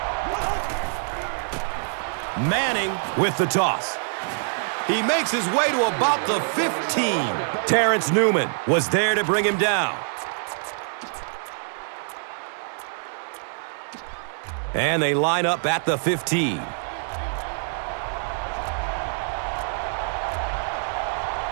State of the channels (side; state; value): left; silent; 62 dB below the other